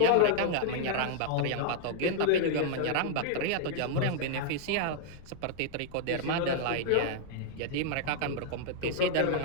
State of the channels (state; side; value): different; both; correlation -0.01